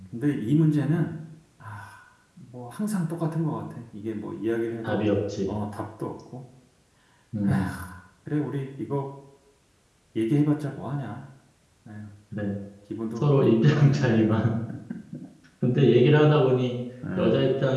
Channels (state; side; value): identical; both; correlation 1.00